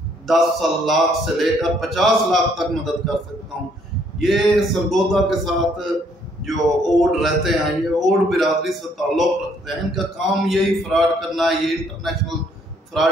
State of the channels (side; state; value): both; normal; correlation 0.66